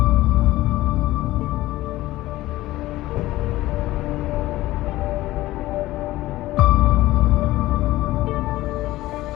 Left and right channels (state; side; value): quieter; right; 16.9 dB